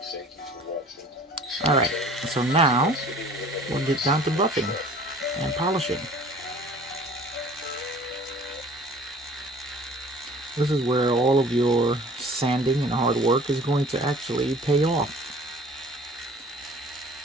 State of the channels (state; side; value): normal; both; correlation 0.48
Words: Alright, so now we'll get down to buffing and polishing. This is where all of your sanding and hard work is going to actually pay off.